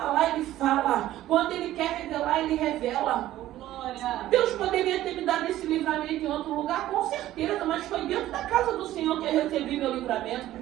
Ele fala. Quando Ele quer revelar, Ele revela. Deus poderia ter me dado esse livramento em outro lugar, com certeza, mas foi dentro da casa do Senhor que eu recebi meu livramento,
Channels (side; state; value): left; quieter; 14.2 dB